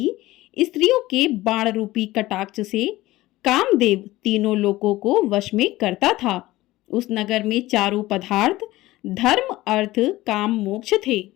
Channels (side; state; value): right; quieter; 17.6 dB